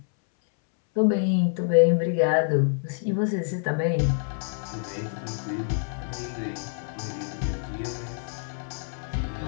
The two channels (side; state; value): right; silent; 60 dB below the other